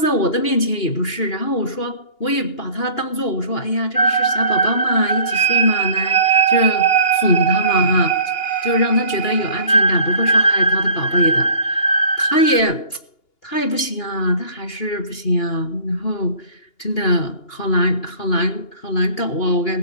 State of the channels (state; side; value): late; right; 2.8 ms